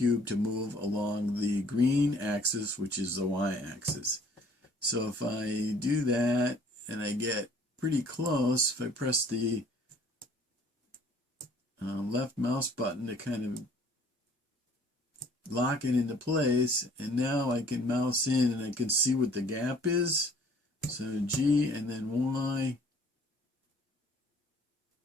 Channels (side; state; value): both; normal; correlation 0.56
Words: to move along the green axis, which is the Y axis. So if I do that and I get pretty close, if I press the left mouse button to kind of lock it into place, and now I can mouse in and I can see what the gap is. So G and then Y,